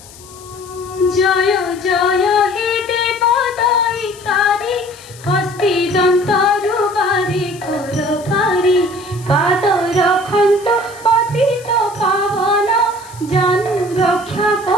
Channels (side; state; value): left; noise; hiss, 21 dB below the sound